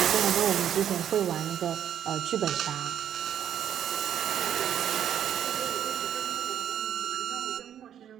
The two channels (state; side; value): quieter; left; 9.8 dB